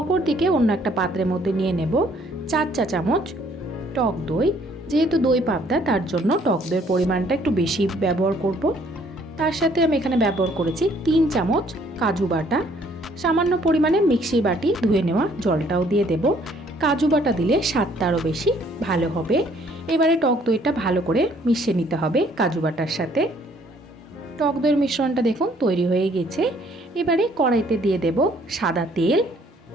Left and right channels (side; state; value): both; normal; correlation 0.62